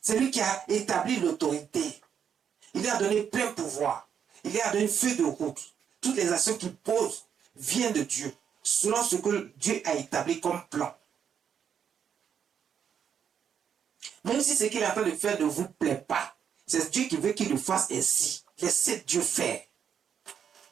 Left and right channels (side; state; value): left; quieter; 8.0 dB